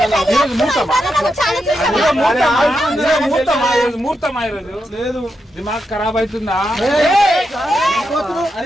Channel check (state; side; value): normal; both; correlation 0.85